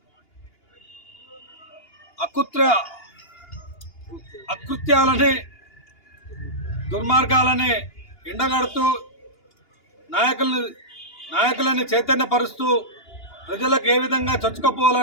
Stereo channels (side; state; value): right; late; 2.9 ms